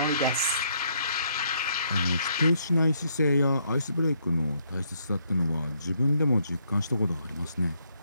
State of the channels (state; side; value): inverted; both; correlation -0.71